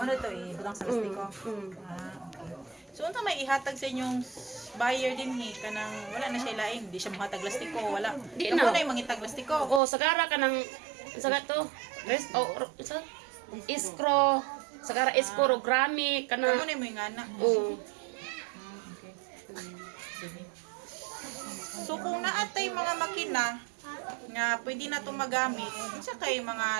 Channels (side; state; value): left; drops out; at 9.8 s